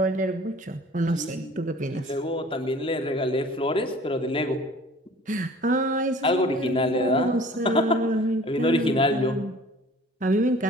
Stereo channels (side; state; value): both; normal; correlation 0.48